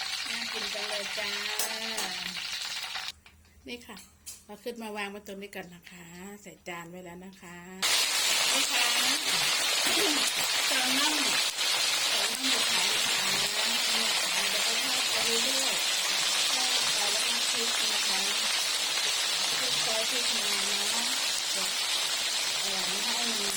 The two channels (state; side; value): identical; both; correlation 1.00